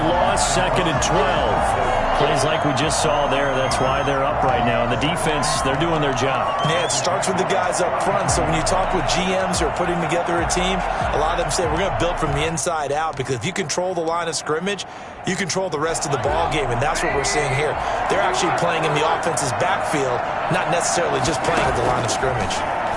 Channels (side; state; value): both; identical; correlation 1.00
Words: 2nd and 12. Plays like we just saw there. That's why they're up right now. And the defense, they're doing their job. Yeah, it starts with the guys up front. So when you talk with GMs who are putting together a team, a lot of them say we're going to build from the inside out, because if you control the line of scrimmage, you control the rest of the ball game, and that's what we're seeing here. They're actually playing in the offense's backfield, not necessarily just playing at the line of scrimmage.